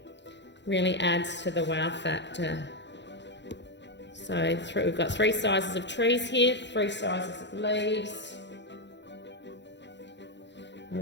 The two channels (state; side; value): late; right; 0.52 ms